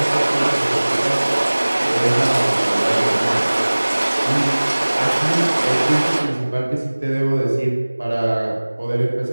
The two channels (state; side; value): inverted; both; correlation -1.00